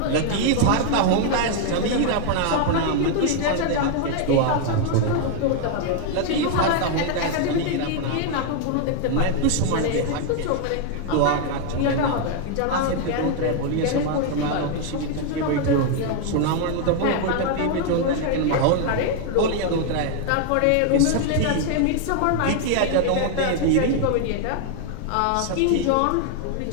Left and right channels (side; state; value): both; different; correlation 0.00